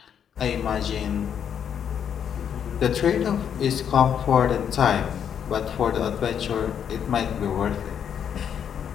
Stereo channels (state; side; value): quieter; right; 8.4 dB